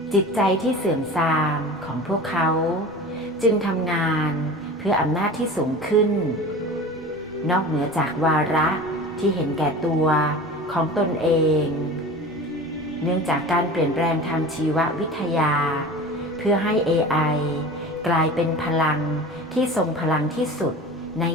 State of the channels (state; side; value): normal; both; correlation 0.36